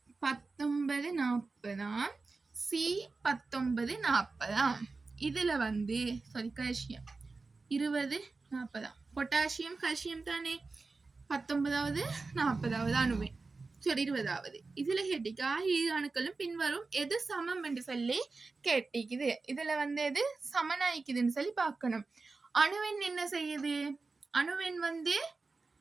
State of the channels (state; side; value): quieter; left; 3.9 dB